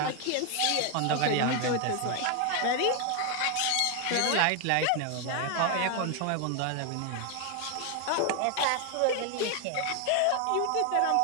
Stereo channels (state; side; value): different; both; correlation 0.01